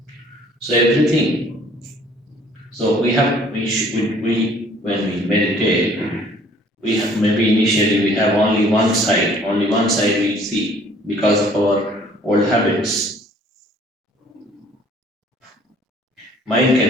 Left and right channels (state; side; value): normal; both; correlation 0.56